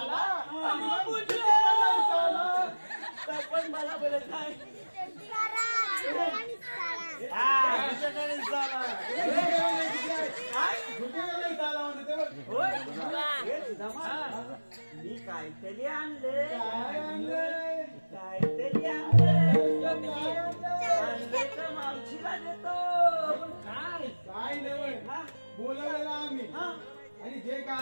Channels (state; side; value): inverted; both; correlation -1.00